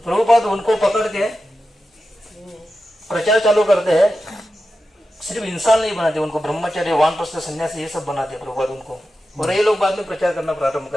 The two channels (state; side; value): normal; both; correlation 0.91